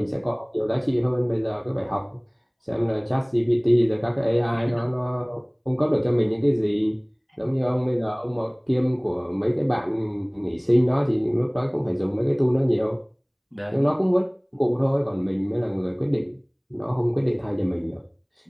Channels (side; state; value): both; identical; correlation 1.00